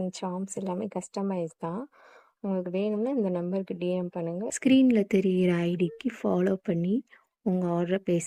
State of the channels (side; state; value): both; identical; correlation 1.00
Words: சார்ம்ஸ் எல்லாமே கஸ்டமைஸ் தான். உங்களுக்கு வேணும்னா இந்த நம்பருக்கு டிஎம் பண்ணுங்கள். ஸ்க்ரீனில் தெரிகிற ஐடிக்கு ஃபாலோ பண்ணி உங்கள் ஆர்டரை ப்ளேஸ்